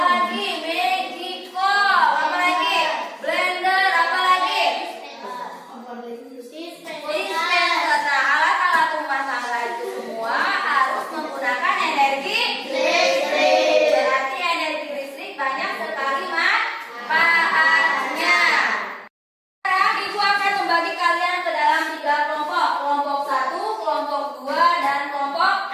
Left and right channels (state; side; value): identical; both; correlation 1.00